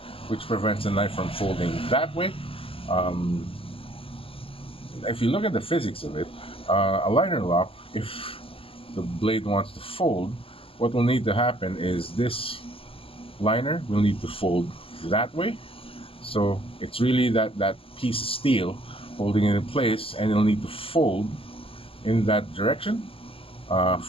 which prevents the knife from folding that way. Um, if you look at the physics of it, a liner lock, if the blade wants to fold, what will need to happen is this liner will need to fold that way. So it's really that piece of steel holding it in place, and it'll need to fold in that direction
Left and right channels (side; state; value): right; late; 0.27 ms